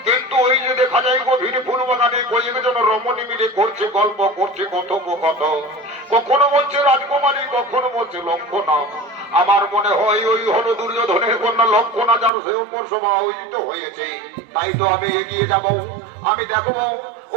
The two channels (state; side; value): drops out; left; at 12.3 s